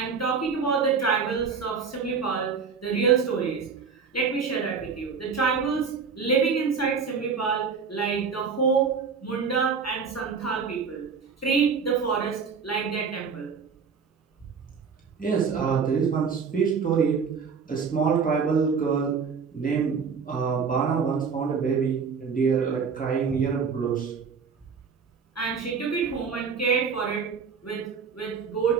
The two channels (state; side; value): quieter; left; 5.8 dB